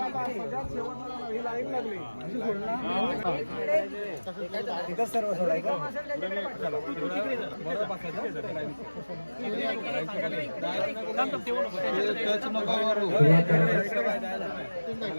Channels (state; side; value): inverted; both; correlation -1.00